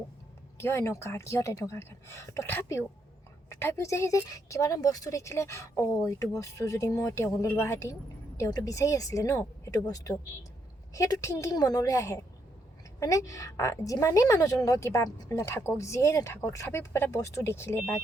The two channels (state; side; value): normal; both; correlation 0.76